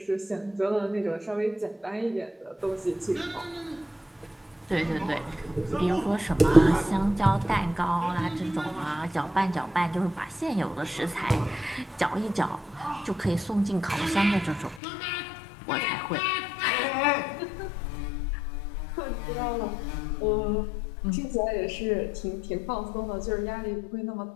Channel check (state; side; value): drops out; right; at 14.8 s